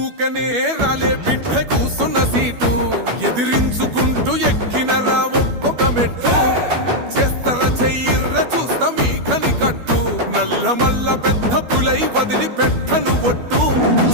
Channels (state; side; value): late; left; 12 ms